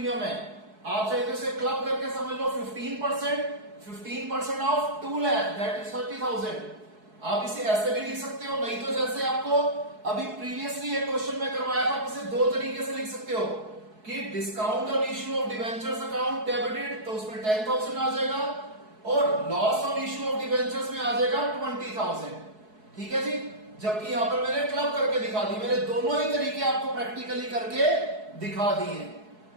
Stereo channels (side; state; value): left; late; 4.7 ms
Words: है। आप चाहे तो इसे क्लब करके समझ लो 15% ऑफ 2 लाख दैट इज 30,000। आप इसे ऐसे भी लिख सकते हो, नहीं तो जैसे आपको अभी प्रीवियसली एक क्वेश्चन में करवाया था, इसे दो तरीके से लिख सकते हो कि discount on issue of debentures account debited तो उसमें 10,000 आ जाएगा और loss on issue of debentures में आ जाएगा 20,000। ठीक है जी। जबकि यहां पर मैंने क्लब करके दिखा दी, मैंने दोनों ही तरीके आपको प्रैक्टिकली करके दिखा दिए।